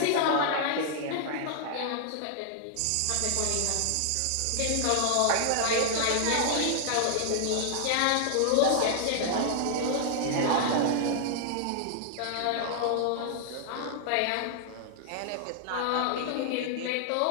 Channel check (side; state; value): both; different; correlation 0.00